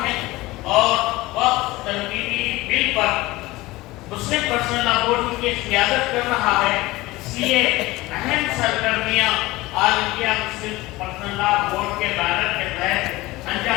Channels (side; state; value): right; quieter; 19.7 dB